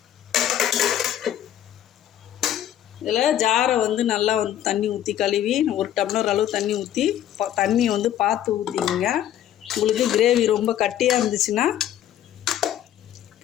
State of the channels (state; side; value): quieter; right; 11.4 dB